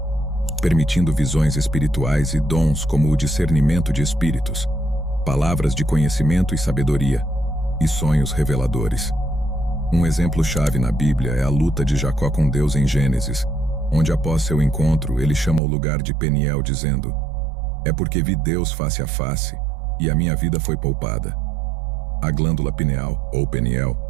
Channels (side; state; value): left; drops out; at 15.6 s